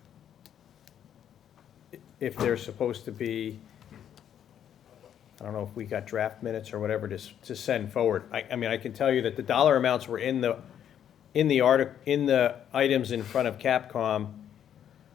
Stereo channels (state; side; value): quieter; right; 9.6 dB